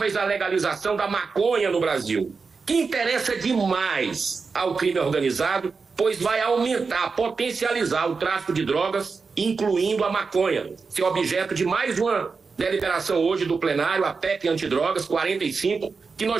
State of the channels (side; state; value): left; quieter; 4.8 dB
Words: à legalização da maconha no Brasil, que interessa demais ao crime organizado, pois vai aumentar, potencializar o tráfico de drogas, incluindo a maconha, ser objeto de mais uma deliberação hoje do plenário, a PEC antidrogas 45, que